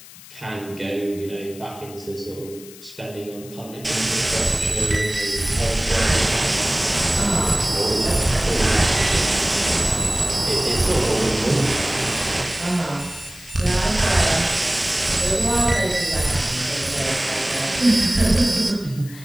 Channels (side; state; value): left; noise; hiss, 19 dB below the sound